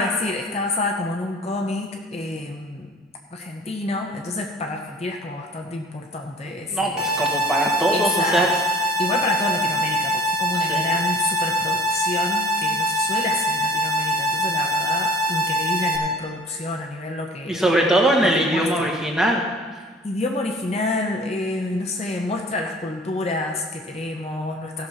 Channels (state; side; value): normal; both; correlation 0.48